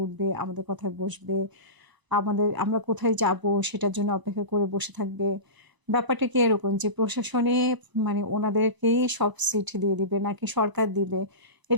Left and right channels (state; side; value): late; left; 1.0 ms